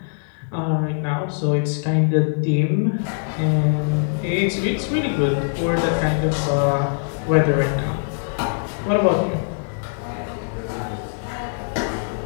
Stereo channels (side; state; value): right; silent; digital silence